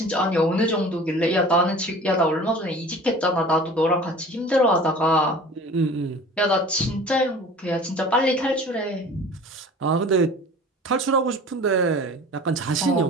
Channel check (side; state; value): both; normal; correlation 0.42